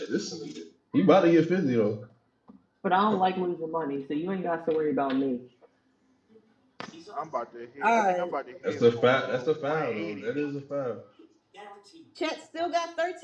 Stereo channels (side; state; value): both; identical; correlation 1.00